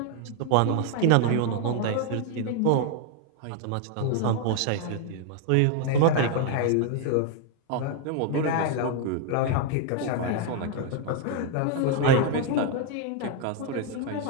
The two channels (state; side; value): different; both; correlation 0.00